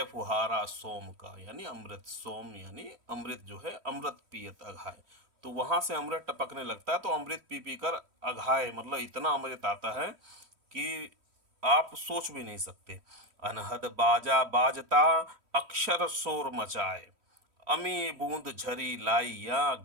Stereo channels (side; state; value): left; late; 3.1 ms